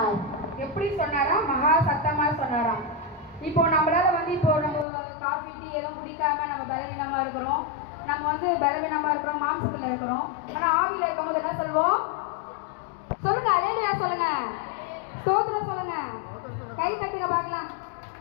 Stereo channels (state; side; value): drops out; right; at 4.9 s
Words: எப்படி சொன்னாரா? மகா சத்தமா சொன்னாராம். இப்போ நம்மளால இப்போ நம்ம காஃபி டீ எதுவும் குடிக்காம நம்ம பலவீனமா இருக்கிறோம். நம்ம பலவீனமா இருக்கிறோம், மாம்சத்துல இருக்கிறோம். ஆனா ஆவியில இருக்கும்போது என்ன சொல்வோம்? சொல்லுங்க, அல்லேலூயா சொல்லுங்க, ஸ்தோத்திரம் சொல்லுங்க. கை தட்டுங்க பார்க்கலாம்.